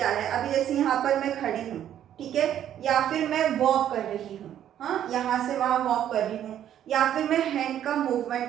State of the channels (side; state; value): left; quieter; 10.7 dB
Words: है, अभी जैसे यहाँ पर मैं खड़ी हूँ, ठीक है, या फिर मैं वॉक कर रही हूँ, हाँ, यहाँ से वहाँ वॉक कर रही हूँ, या फिर मैं हैंड का